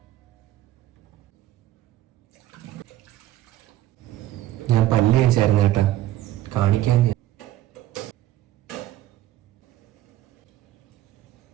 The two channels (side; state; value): left; quieter; 13.8 dB